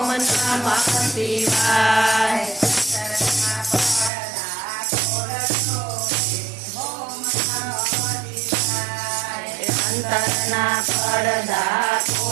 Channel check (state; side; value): drops out; left; at 4.1 s